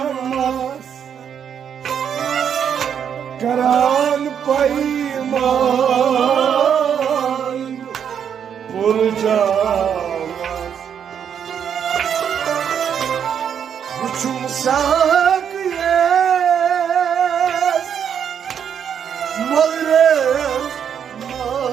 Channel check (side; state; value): left; quieter; 8.2 dB